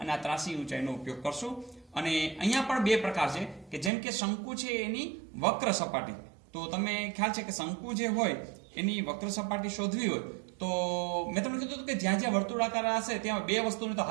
આ ત્રાસી ઊંચાઈનો ઉપયોગ કરશું. અને અહીંયા પણ બે પ્રકાર છે કે જેમ કે શંકુ છે એની વક્ર સપાટી, તો તમે ખ્યાલ છે કે શંકુ જે હોય એની વક્ર સપાટી શોધવી હોય તો મેં તમને કીધું કે જ્યાં જ્યાં વર્તુળાકાર હશે ત્યાં બે વસ્તુની તો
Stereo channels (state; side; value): drops out; left; at 3.9 s